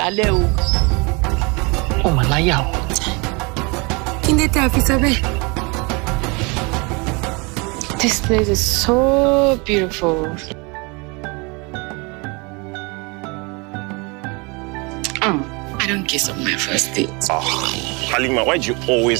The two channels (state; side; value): quieter; left; 29.0 dB